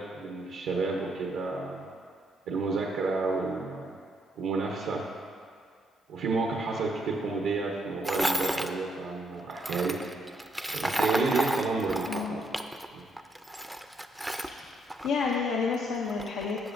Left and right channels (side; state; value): both; normal; correlation 0.74